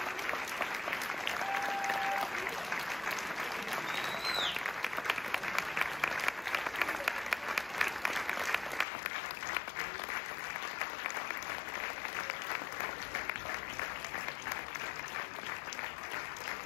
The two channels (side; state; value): right; drops out; at 8.8 s